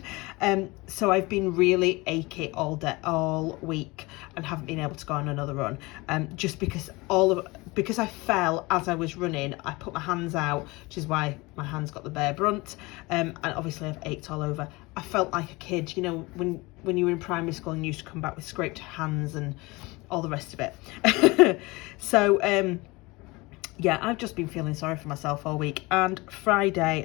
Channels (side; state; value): right; quieter; 23.6 dB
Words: So I've been really achy all week, and haven't been able to go on another run. Just because I fell as I was running, I put my hands out, which is why my hands got the bare brunt. And obviously I've ached all over. I felt like a kid, you know, when you were in primary school and you used to come back with scraped hands and all the rest of it. So yeah, I've just been feeling sorry for myself all week. And Friday,